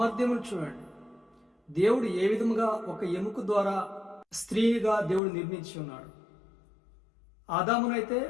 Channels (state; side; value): drops out; right; at 5.2 s